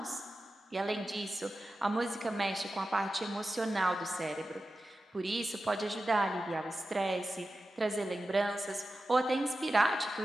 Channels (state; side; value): normal; both; correlation 0.93